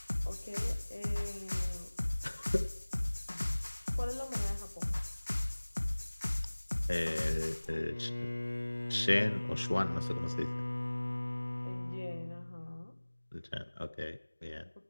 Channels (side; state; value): both; inverted; correlation -1.00